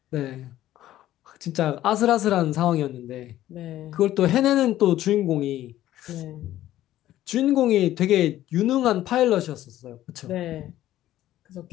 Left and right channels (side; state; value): right; quieter; 13.7 dB